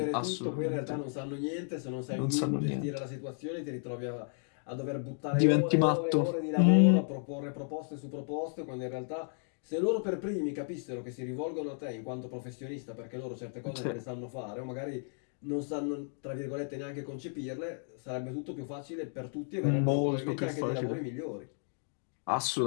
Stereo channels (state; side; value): silent; right; 55 dB below the other